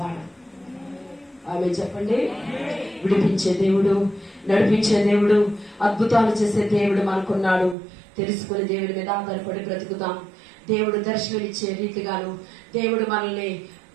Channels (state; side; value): drops out; left; at 7.8 s